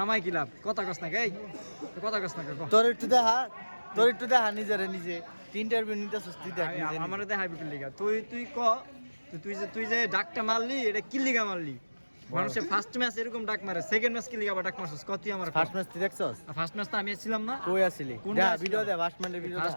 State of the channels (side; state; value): both; inverted; correlation -1.00